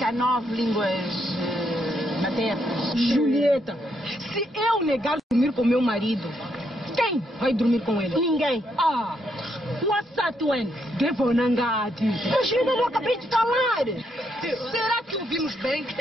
há 9 línguas maternas. Julieta, se eu negar dormir com meu marido, quem vai dormir com ele? Ninguém. Wassatuen, Devonangati. Mas eu não acabei de falar. Será que ouvimos bem?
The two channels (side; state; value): both; normal; correlation 0.77